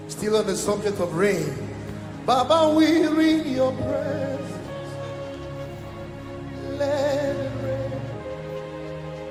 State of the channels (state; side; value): identical; both; correlation 1.00